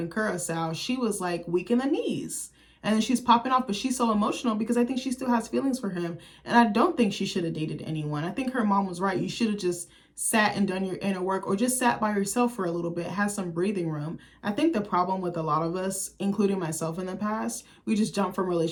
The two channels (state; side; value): identical; both; correlation 1.00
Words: Curacao, she was like weak in the knees. And then she's popping off, but she's so emotional because I think she still has feelings for him. And I don't think she should have dated anyone. I think her mom was right. You should have just sat and done your inner work, or just sat by yourself for a little bit, have some breathing room. I think the problem with a lot of us, including myself in the past, we just jump from